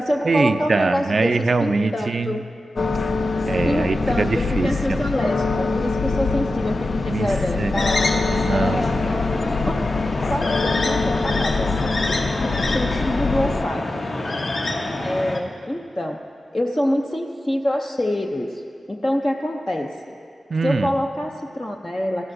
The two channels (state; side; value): normal; both; correlation 0.92